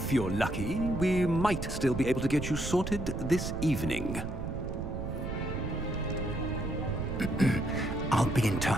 you're lucky, we might still be able to get you sorted this evening. I'll be in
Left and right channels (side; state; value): right; noise; rumble, 5 dB below the sound